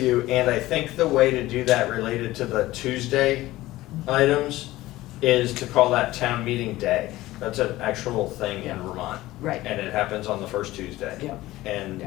you, and I think the way to do that related to the Tuesday items is to call that town meeting day. That's an actual thing in Vermont, Right, and it happens on the first Tuesday. yeah, And Yeah.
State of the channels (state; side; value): quieter; right; 17.1 dB